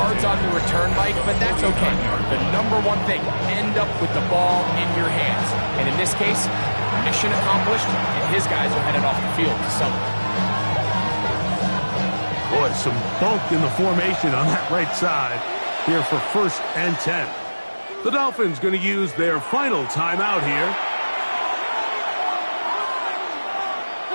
on the return, Mike, but that's okay. The number one thing, end up with the ball in your hands. And in this case, mission accomplished, and his guys are headed off the field to celebrate. Boy, some bulk in the formation on that right side here for first and 10. The Dolphins going to use their final timeout here.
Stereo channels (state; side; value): inverted; both; correlation -1.00